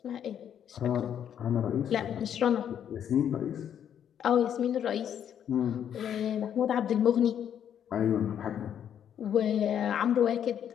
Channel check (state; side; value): quieter; right; 9.2 dB